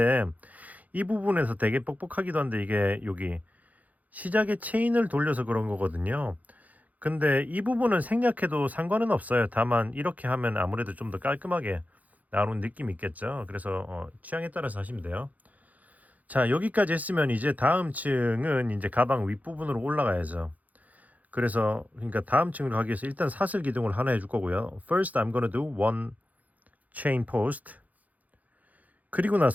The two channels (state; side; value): late; left; 0.078 ms